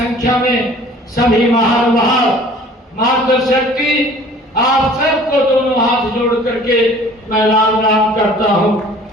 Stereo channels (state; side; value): normal; both; correlation 0.50